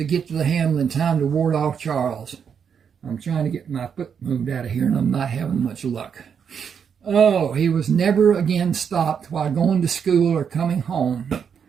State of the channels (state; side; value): quieter; left; 7.2 dB